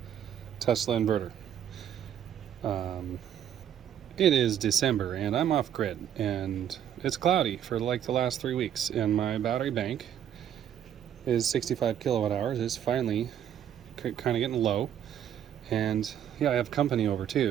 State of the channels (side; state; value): left; quieter; 9.9 dB